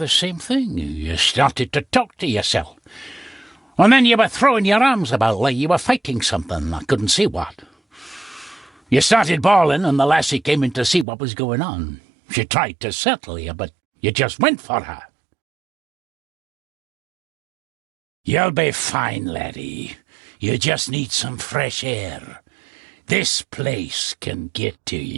same thing. You started to talk to yourself. And then you were throwing your arms about like you were fighting something. I couldn't see what. You started bawling and the lassie came in to see what was going on. She tried to settle you, but you just went for her. You'll be fine, laddie. You just need some fresh air. This place can get to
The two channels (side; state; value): left; drops out; at 11.1 s